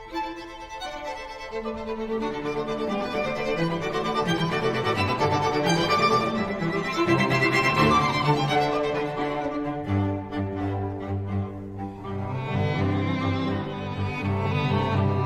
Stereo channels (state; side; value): identical; both; correlation 1.00